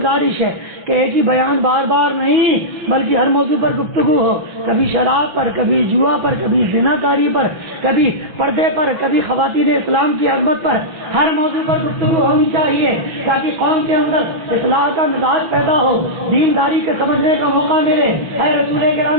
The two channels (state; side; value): late; left; 6.2 ms